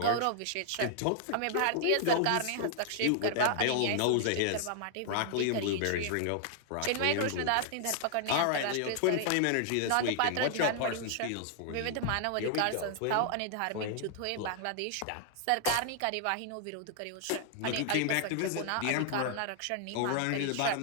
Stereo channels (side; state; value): both; different; correlation 0.00